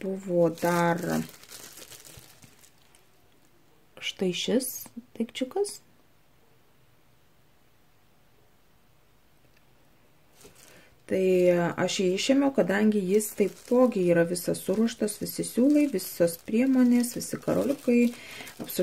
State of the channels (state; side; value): identical; both; correlation 1.00